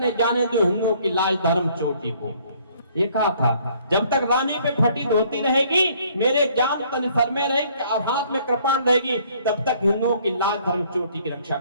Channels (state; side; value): inverted; both; correlation -0.61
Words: जाने दो हिंदुओं की लाज धर्म चोटी को। ये कहा था, जब तक रानी पे फटी धोती रहेगी, मेरे जान तन सर में रहेगी और हाथ में कृपाण रहेगी, तब तक हिंदुओं की लाज धर्म चोटी की रक्षा